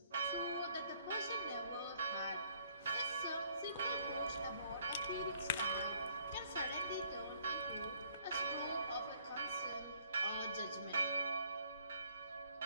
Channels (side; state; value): both; inverted; correlation -0.63